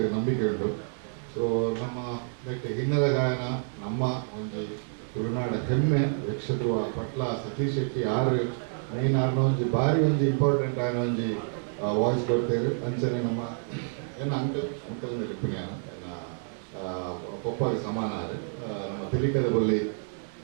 ನಂಬಿಕೆ ಉಂಟು ಸೊ ನಮ್ಮ ಹಿನ್ನೆಲೆ ಗಾಯನ ನಮ್ಮ ಒಂದು ತುಳುನಾಡ ಹೆಮ್ಮೆ ಯಕ್ಷದ್ರು ಪಟ್ಲ ಸತೀಶ್ ಶೆಟ್ಟಿ ಆರು ಮೈನ್ ಆರ್ನ ಒಂಜಿ ಭಾರಿ ಒಂಜಿ ಇಂಪಾರ್ಟೆಂಟ್ ಆಯ್ನ ಒಂಜಿ ವಾಯ್ಸ್ ಕೊಡ್ತೇವೆ ಅಂಚನೆ ನಮ್ಮ ಏನು ಅಂಕಲ್ ರಿಪಿನ್ಯಾನ ಪೊಪ್ಪಗೆ ಸಮಾನ ಆದರೆ ನಮ್ಮ ತೆಲಿಕದ ಬಲ್ಲಿ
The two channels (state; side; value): silent; left; 59 dB below the other